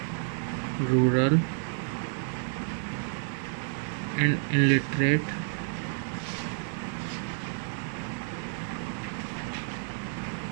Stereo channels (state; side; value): silent; left; digital silence